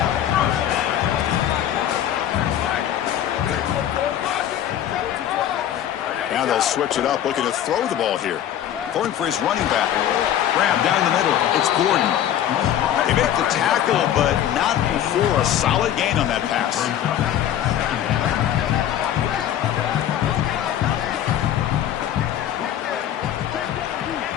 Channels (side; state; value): right; quieter; 10.9 dB